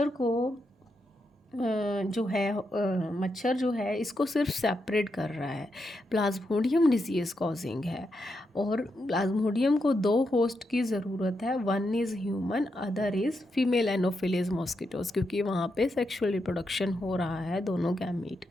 को जो है मच्छर जो है इसको सिर्फ सेपरेट कर रहा है, प्लाज्मोडियम डिजीज़ कॉजिंग है। और प्लाज्मोडियम को दो होस्ट की ज़रूरत है, one is human, other is female anopheles mosquitoes, क्योंकि वहाँ पे सेक्सुअल रिप्रोडक्शन हो रहा है दोनों गैमीट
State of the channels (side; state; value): both; normal; correlation 0.84